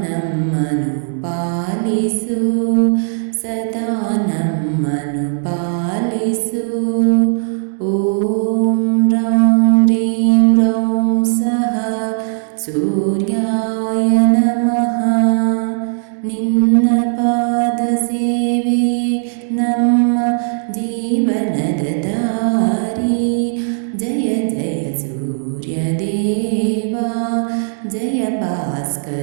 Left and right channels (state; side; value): silent; left; 68 dB below the other